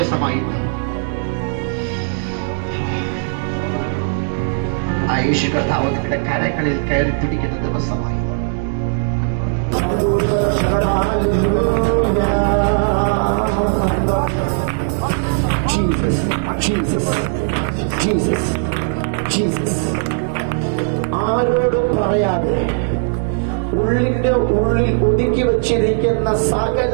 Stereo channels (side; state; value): left; silent; 67 dB below the other